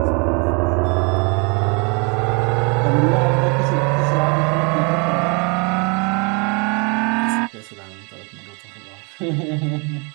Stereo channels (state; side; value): quieter; left; 32.9 dB